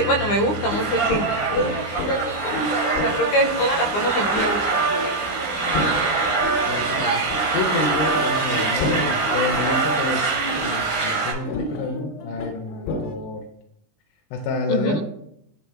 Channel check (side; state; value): right; late; 19 ms